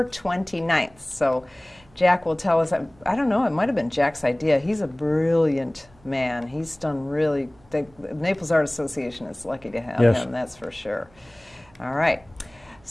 29th. So Jack will tell us, I don't know, it might have been Jack's idea. He's a brilliant man. He's done really, the Naples Art Association is lucky to have him, that's for sure. All right.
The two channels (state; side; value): noise; right; hum, 29 dB below the sound